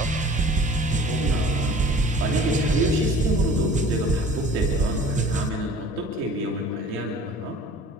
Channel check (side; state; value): both; normal; correlation 0.47